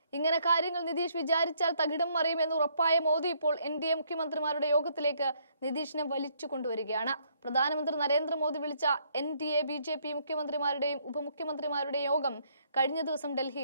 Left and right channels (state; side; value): inverted; both; correlation -0.68